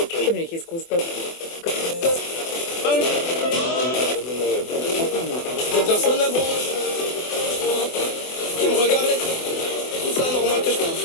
Mais qu'est-ce qu'on se passe? Personne à branche qui me regardait. Tout ça normal que je fasse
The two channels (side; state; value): right; late; 24 ms